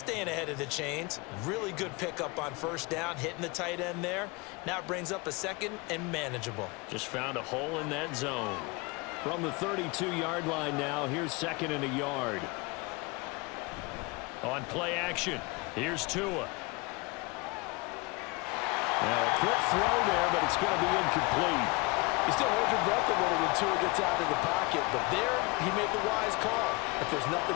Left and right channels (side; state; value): right; quieter; 26.3 dB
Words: ahead of the chains. Really good pickup on first down, hitting the tight end there. Now it brings up a second and manageable. Just found a hole in that zone. From the 32-yard line now, here's second and a yard. On play action, here's Tua. Now a quick throw there, but it's going to be incomplete. You still hold your breath a little when Tua gets out of the pocket, but there he made the wise call. If there's nothing